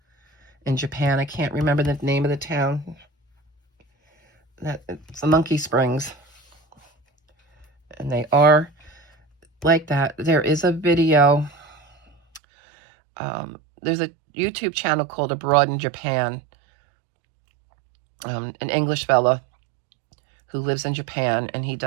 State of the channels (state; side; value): drops out; left; at 12.4 s